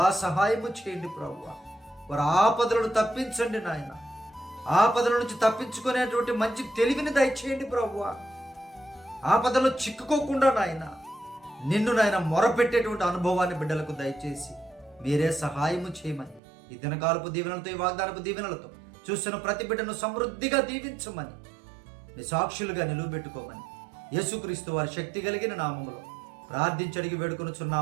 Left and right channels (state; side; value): drops out; left; at 16.4 s